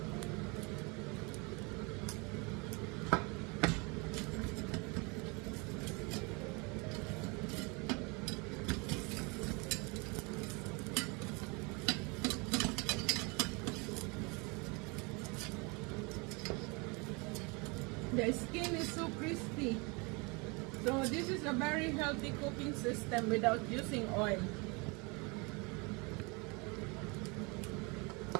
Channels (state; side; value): quieter; left; 29.4 dB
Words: The skin is so crispy. So this is a very healthy cooking system without using oil.